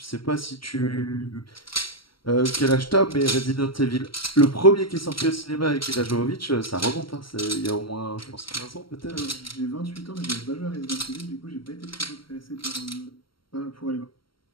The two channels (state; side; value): late; right; 0.74 ms